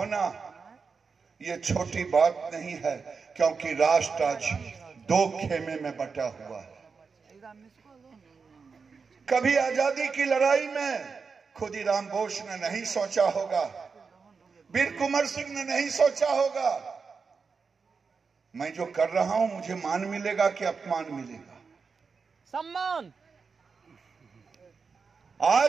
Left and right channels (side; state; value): left; quieter; 5.1 dB